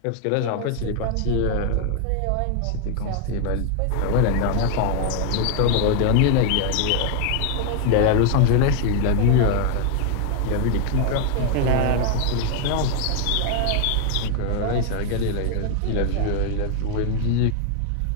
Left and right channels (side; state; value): both; different; correlation 0.01